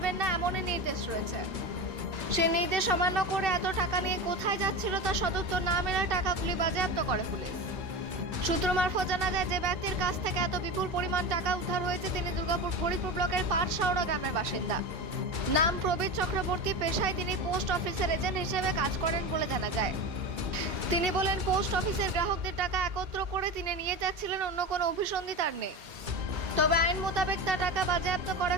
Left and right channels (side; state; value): left; late; 2.2 ms